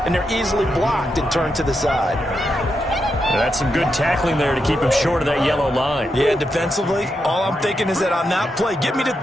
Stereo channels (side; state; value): both; normal; correlation 0.84